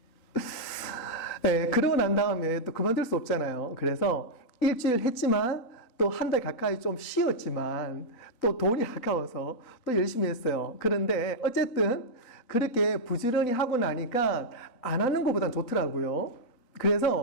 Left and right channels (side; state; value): right; late; 4.0 ms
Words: 네, 그러고 난 다음에 또 그만둘 수 없잖아요. 그래서 일주일 했지만 또 한 달 가까이 좀 쉬었지만 또 돈이 아까워서 또 열심히 했어요. 그런데 어쨌든 그렇게 부지런히 하고 나니까 안 하는 것보단 좋더라고요.